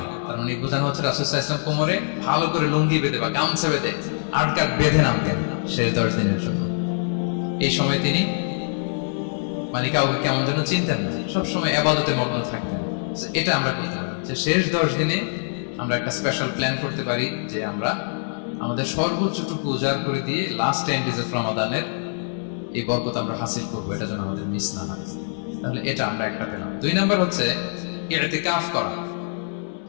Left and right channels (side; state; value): right; silent; digital silence